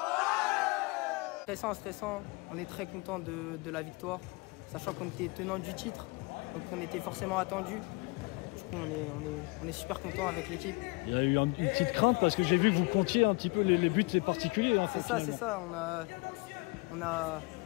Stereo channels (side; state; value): right; quieter; 27.7 dB